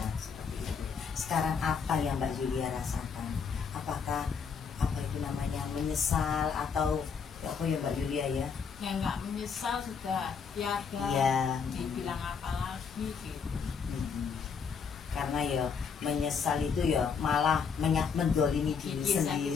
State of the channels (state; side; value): quieter; right; 6.1 dB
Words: seperti itu. Sekarang apa yang Mbak Yulia rasakan? Apakah apa itu namanya menyesal atau apa ya Mbak Yulia ya? Ya nggak menyesal, sudah tiada Iya. dibilang apa lagi gitu. Karena ya menyesal itu ya malah mendolimi diri